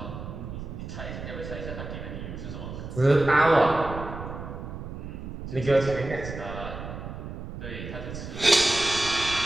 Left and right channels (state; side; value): noise; right; rumble, 9 dB below the sound